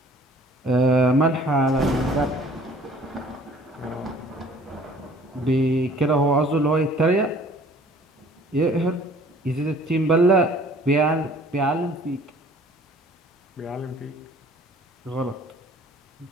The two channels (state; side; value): normal; both; correlation 0.53